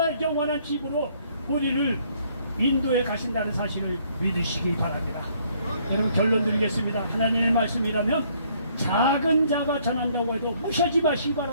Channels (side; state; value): both; inverted; correlation -0.65